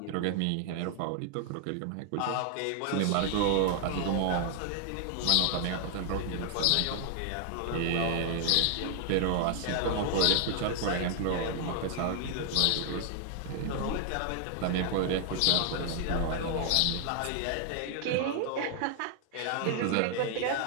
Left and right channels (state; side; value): different; both; correlation 0.00